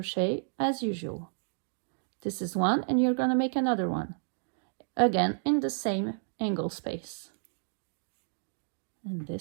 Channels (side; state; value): left; silent; digital silence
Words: as usual. This is one, and you're going to make another one again in the same angle space, and